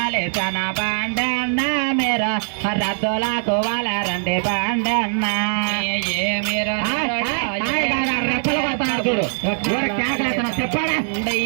బండన్న మీరు రద్దులకు వాళ్ళరండి బండన్న ఏమిరు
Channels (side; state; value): left; silent; 65 dB below the other